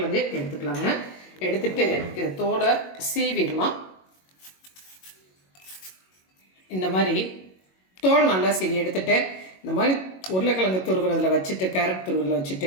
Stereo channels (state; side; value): late; right; 22 ms